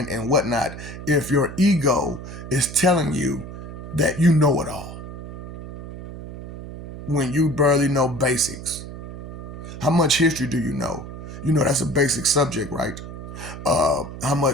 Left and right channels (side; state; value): right; noise; hum, 11 dB below the sound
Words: and whatnot if your ego is telling you that you know it all, when you barely know basics. How much history do you know? You know that's a basic subject, right? How